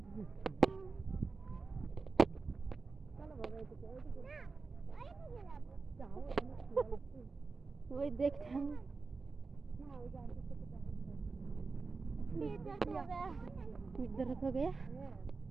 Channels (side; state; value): left; quieter; 4.3 dB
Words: চলো বাবা এদিকে ওইদিকে যাও, ওই দেখতাম না, ওই যে আন্টির সাথে দেখা इधर हो गया।